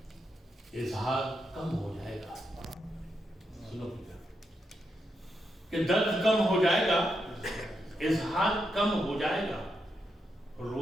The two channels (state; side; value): normal; both; correlation 0.83